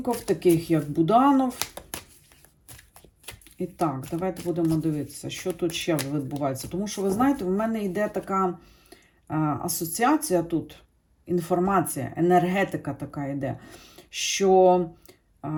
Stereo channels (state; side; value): identical; both; correlation 1.00